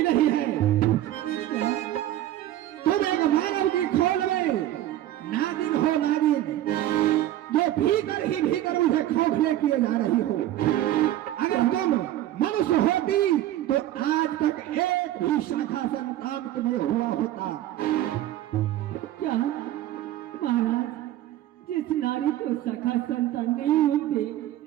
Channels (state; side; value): quieter; left; 13.4 dB